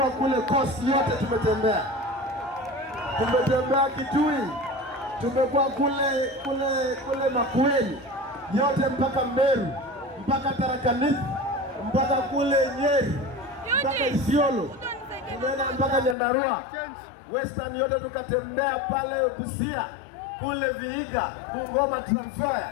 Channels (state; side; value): drops out; right; at 16.2 s